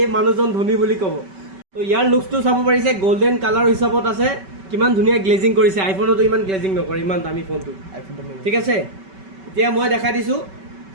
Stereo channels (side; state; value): left; late; 5.2 ms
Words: মানুহজন ধনী বুলি ক'ব তো ইয়াৰ লুকছটো চাব পাৰিছে গোল্ডেন কালাৰ হিচাপত আছে কিমান ধুনীয়া গ্লেজিং কৰিছে আইফোনতো ইমান গ্লেজিং নকৰে ইমান দামী ফোনটো ঠিক আছে এতিয়া মই দেখাই দিছোঁ